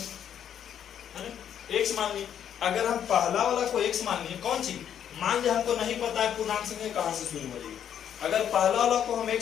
ना? x मान लिए। अगर हम पहला वाला को x मान लिए, कौन चीज मान लिया हमको नहीं पता है पूर्णांक संख्या कहां से शुरू हो रही है। अगर पहला वाला को हम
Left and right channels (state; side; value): quieter; right; 9.3 dB